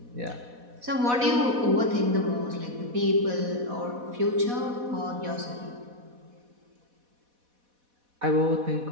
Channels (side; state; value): left; late; 4.1 ms